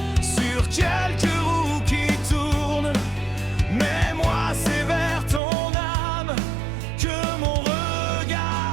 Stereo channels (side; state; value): left; drops out; at 5.4 s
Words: sur quelques roues qui tournent, mais moi c'est vers ton âme que mon